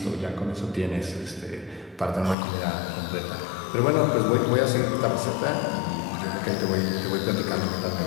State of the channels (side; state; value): right; drops out; at 2.4 s